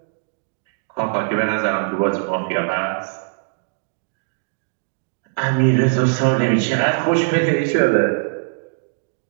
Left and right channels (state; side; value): silent; left; digital silence